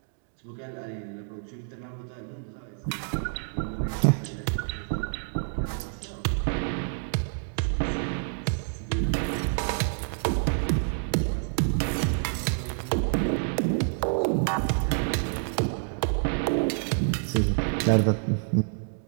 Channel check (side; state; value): left; silent; 59 dB below the other